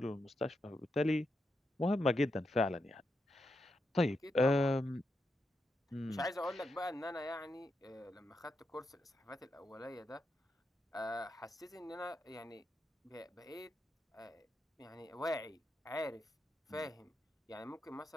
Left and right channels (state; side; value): normal; both; correlation 0.85